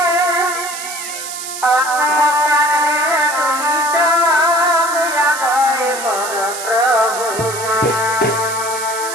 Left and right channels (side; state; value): right; noise; hiss, 8 dB below the sound